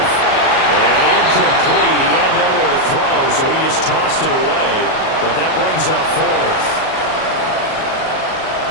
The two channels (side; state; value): right; late; 38 ms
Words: And incomplete. He had nowhere to throw, so he just tossed it away. But that brings up 4th.